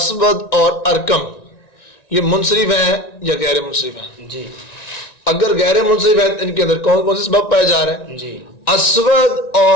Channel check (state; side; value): late; right; 1.9 ms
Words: اور ارکم یہ منصرف ہیں یا غیر منصرف ہیں؟ جی اگر غیر منصرف ہیں ان کے اندر کون کون سے سبب پائے جا رہے ہیں؟ جی اسود